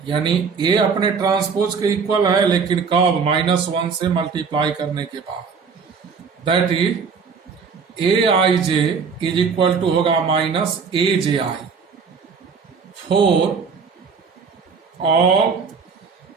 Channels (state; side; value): quieter; left; 5.6 dB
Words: यानी A अपने ट्रांसपोज के इक्वल है, लेकिन कब? -1 से मल्टीप्लाई करने के बाद। That is A I J is equal to होगा -AJI for all